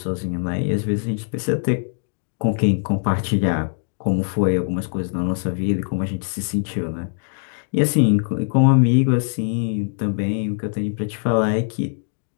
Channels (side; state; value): right; silent; 60 dB below the other